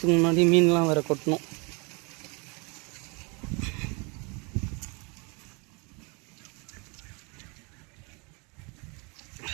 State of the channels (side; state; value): left; quieter; 31.2 dB